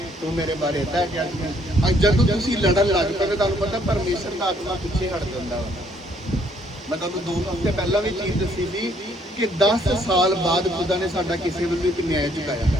ਤੂੰ ਮੇਰੇ ਬਾਰੇ ਇੱਦਾਂ ਗਿਆ। ਜਦੋਂ ਤੁਸੀਂ ਲੜਨ ਲੱਗ ਪਏ, ਤੁਹਾਨੂੰ ਪਤਾ ਪਰਮੇਸ਼ਰ ਦਾ ਆਤਮਾ ਪਿੱਛੇ ਹਟ ਜਾਂਦਾ ਵਾ। मैं तुहानू 2 हफ्ते पहला भी चीज़ दसी थी कि 10 साल बाद खुदा ने साडा किसी भी न्याय चुकाया।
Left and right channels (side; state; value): both; normal; correlation 0.66